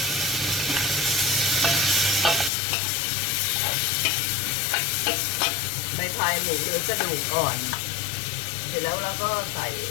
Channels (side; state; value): right; drops out; at 2.5 s